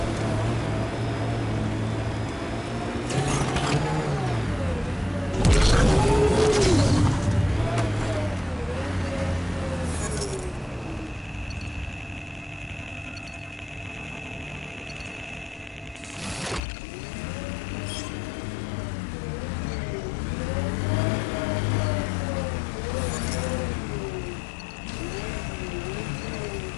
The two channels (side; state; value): right; drops out; at 16.6 s